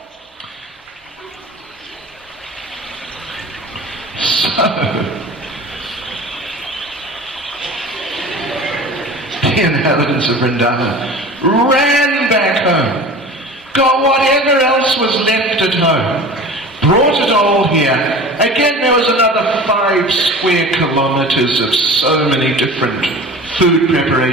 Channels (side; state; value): both; normal; correlation 0.38